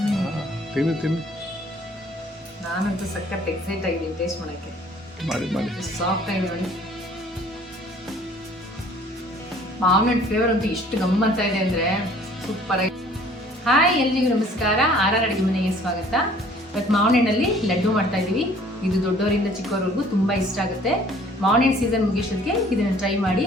ತಿನ್ನಿ ತಿನ್ನಿ. ನಾನಂತೂ ಸಖತ್ ಎಕ್ಸೈಟ್ ಆಗಿದ್ದೀನಿ ಟೇಸ್ಟ್ ಮಾಡೋಕ್ಕೆ. ಮಾಡಿ ಮಾಡಿ. ಸಾಫ್ಟ್ ಆಗಿದೆ ನೋಡಿ. ಮಾವಿನ ಫ್ಲೇವರ್ ಅಂತೂ ಎಷ್ಟು ಗಮ್ಮತ್ತಾ ಇದೆ ಅಂದರೆ ಸೂಪರ್ ಆಗಿ. ಹಾಯ್, ಎಲ್ರಿಗೂ ನಮಸ್ಕಾರ. ಆರ್ ಅಡುಗೆ ಮನೆಗೆ ಸ್ವಾಗತ. ಇವತ್ತು ಮಾವಿನ ಹಣ್ಣಲ್ಲಿ ಲಡ್ಡು ಮಾಡ್ತಾ ಇದ್ದೀವಿ. ಇದು ದೊಡ್ಡವರಿಂದ ಚಿಕ್ಕವರೆಗೂ ತುಂಬ ಇಷ್ಟ ಆಗುತ್ತೆ. ಮಾವಿನ ಹಣ್ಣು ಸೀಸನ್ ಮುಗಿಸೋದಕ್ಕೆ ಇದನ್ನು ಟ್ರೈ ಮಾಡಿ,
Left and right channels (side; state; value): both; normal; correlation 0.54